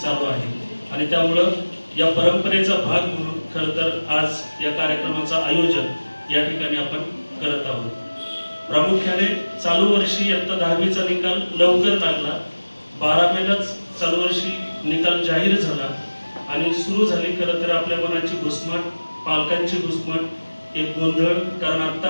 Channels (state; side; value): inverted; both; correlation -1.00